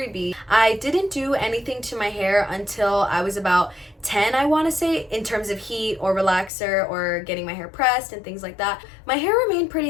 I didn't do anything to my hair until I was about 10, I want to say, in terms of heat or relaxer or getting my hair pressed and things like that. My hair remained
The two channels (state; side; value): drops out; right; at 6.5 s